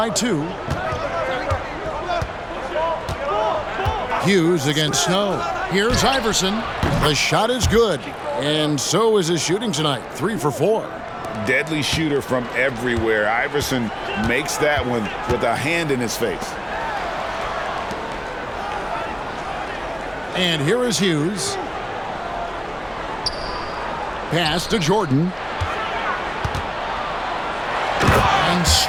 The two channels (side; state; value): both; identical; correlation 1.00